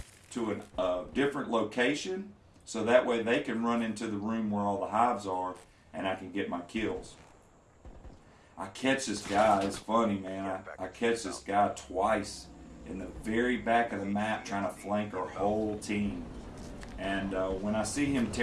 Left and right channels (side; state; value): both; identical; correlation 1.00